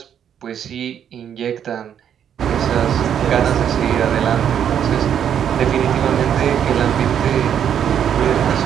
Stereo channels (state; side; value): quieter; left; 9.0 dB